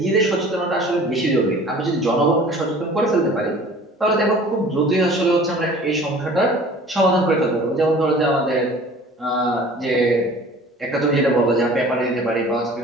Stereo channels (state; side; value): normal; both; correlation 0.46